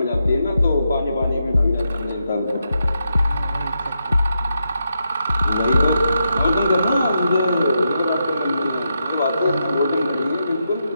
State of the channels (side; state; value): both; inverted; correlation -0.83